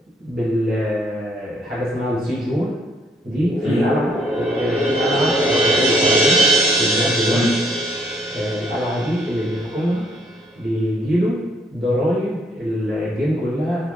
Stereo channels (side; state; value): both; normal; correlation 0.69